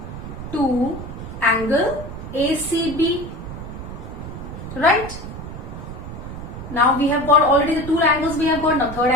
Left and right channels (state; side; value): noise; right; rumble, 10 dB below the sound